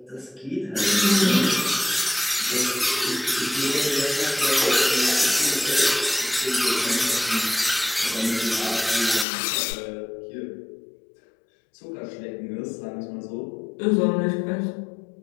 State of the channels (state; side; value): drops out; right; at 9.2 s